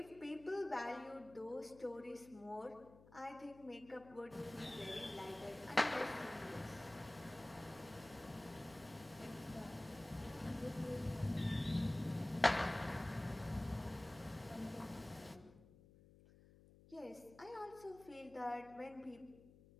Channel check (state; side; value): noise; left; hum, 21 dB below the sound